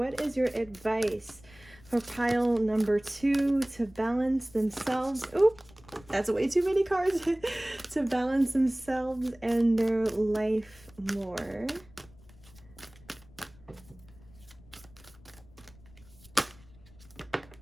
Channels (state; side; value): noise; left; rumble, 24 dB below the sound